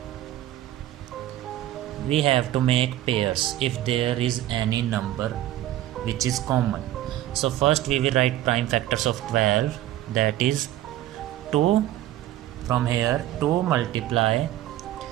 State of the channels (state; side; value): quieter; left; 13.9 dB